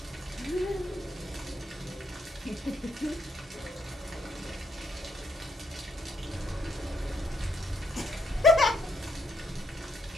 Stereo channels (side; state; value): both; normal; correlation 0.76